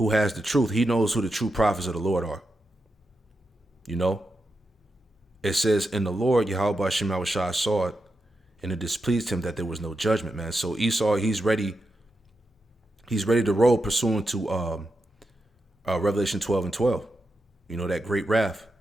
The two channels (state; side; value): normal; both; correlation 0.87